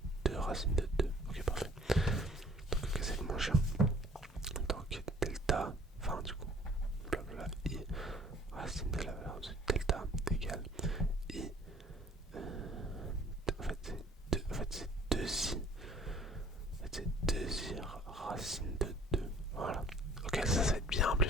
2 racines de 2. Ok, parfait. Donc, ok, c'est moins cher. Donc, delta, enfin, du coup, blablabla, i, racine de la valeur de delta égale i. En fait, c'est 2, en fait, c'est 2i. En fait, c'est 2i racine de 2. Voilà. Ok, ça va être bien plus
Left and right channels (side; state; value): both; normal; correlation 0.54